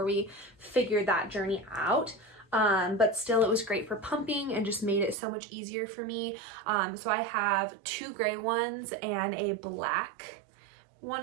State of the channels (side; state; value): left; drops out; at 5.2 s